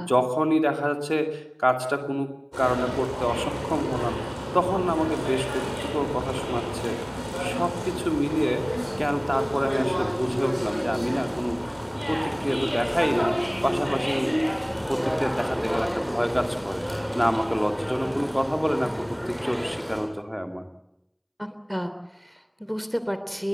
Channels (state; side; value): identical; both; correlation 1.00